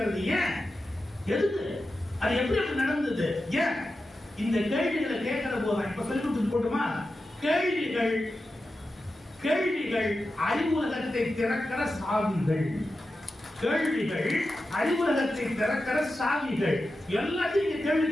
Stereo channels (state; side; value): normal; both; correlation 0.91